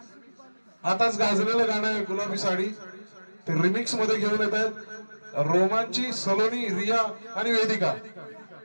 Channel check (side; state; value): both; inverted; correlation -1.00